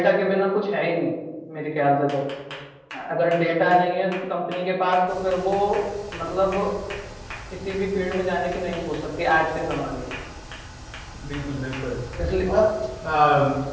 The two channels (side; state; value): both; identical; correlation 1.00